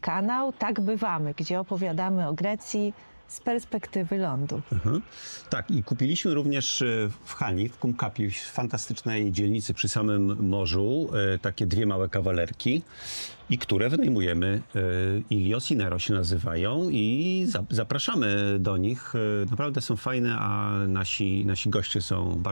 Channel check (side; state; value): both; inverted; correlation -1.00